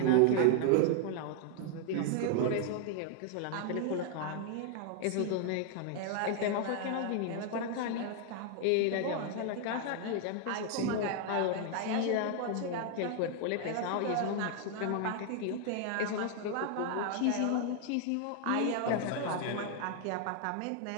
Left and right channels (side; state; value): both; different; correlation 0.00